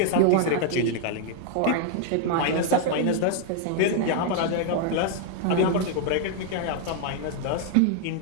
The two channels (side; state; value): both; different; correlation 0.00